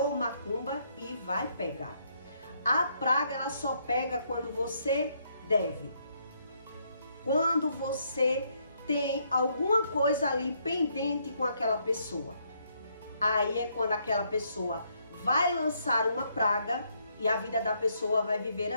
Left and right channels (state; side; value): inverted; both; correlation -0.73